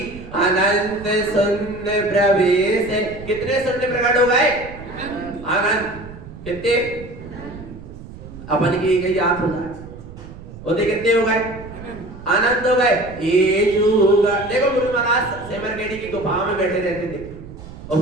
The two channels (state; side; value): noise; right; rumble, 15 dB below the sound